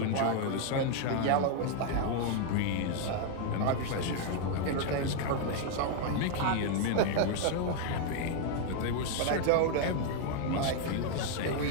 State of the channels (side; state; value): both; different; correlation 0.00